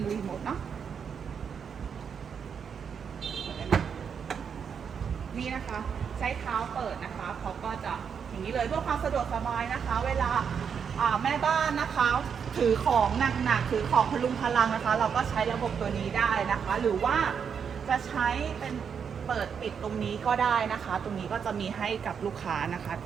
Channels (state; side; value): quieter; left; 6.9 dB